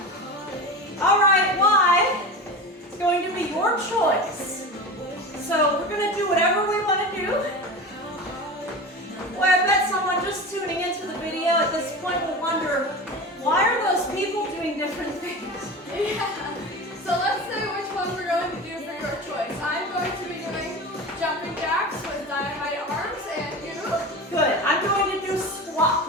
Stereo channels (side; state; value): both; normal; correlation 0.29